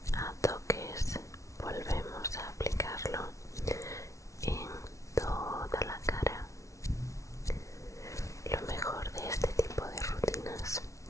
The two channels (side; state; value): right; late; 0.15 ms